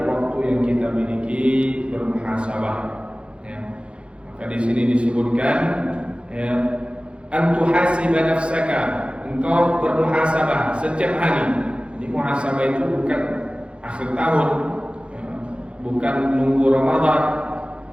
waktu yang kita miliki, bermuhasabah. Ya. Maka di sini disebutkan ya, an tuhasiba nafsaka, engkau bermuhasabah setiap hari. Jadi muhasabah itu bukan akhir tahun, ya, bukan nunggu Ramadan,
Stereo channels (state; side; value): late; left; 0.058 ms